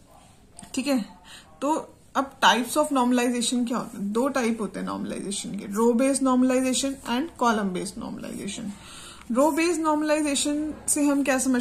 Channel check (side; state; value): both; identical; correlation 1.00